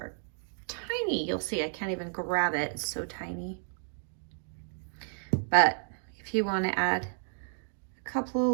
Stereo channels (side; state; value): left; silent; digital silence